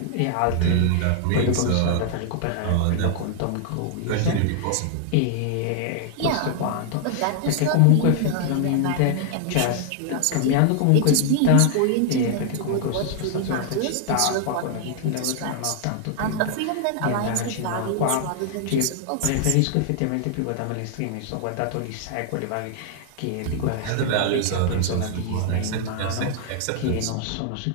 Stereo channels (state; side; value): different; both; correlation 0.00